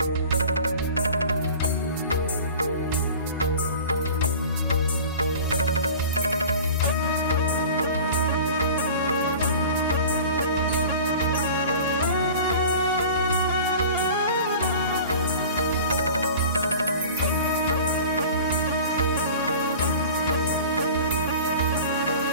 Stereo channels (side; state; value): both; inverted; correlation -0.40